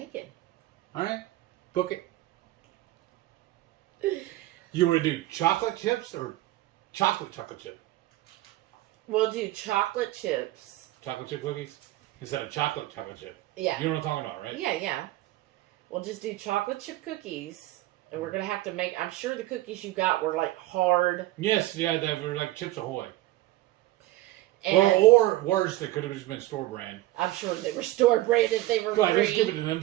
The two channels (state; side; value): quieter; left; 16.5 dB